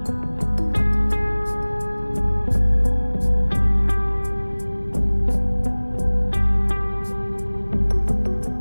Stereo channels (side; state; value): both; inverted; correlation -1.00